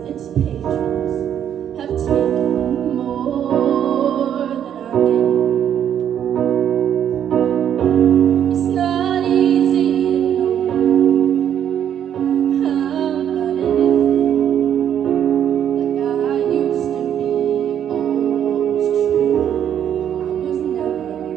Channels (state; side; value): quieter; left; 9.6 dB